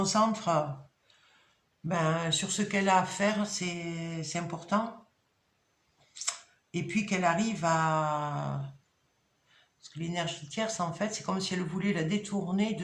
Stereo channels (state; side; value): identical; both; correlation 1.00